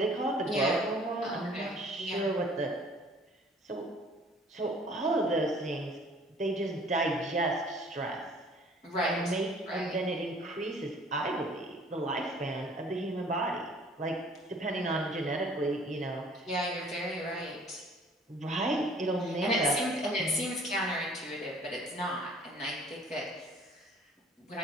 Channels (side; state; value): both; normal; correlation 0.54